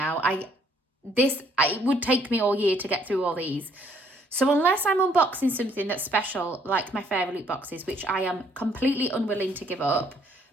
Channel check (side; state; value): both; normal; correlation 0.66